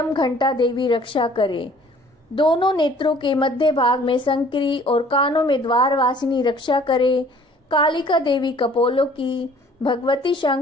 घंटा देवी रक्षा करे। दोनों नेत्रों के मध्य भाग में संकरी और कानों में द्वारवासिनी रक्षा करे। कालिका देवी कपोलों की, भगवती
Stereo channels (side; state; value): both; normal; correlation 0.54